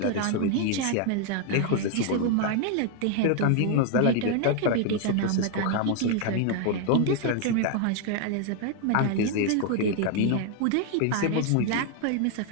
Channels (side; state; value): both; different; correlation 0.00